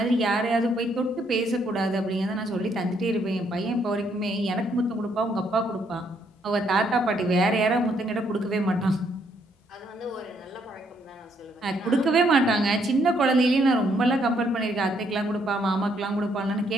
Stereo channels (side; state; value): both; normal; correlation 0.71